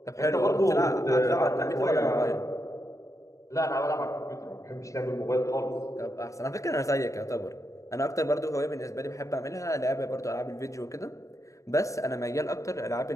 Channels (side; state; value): right; late; 0.15 ms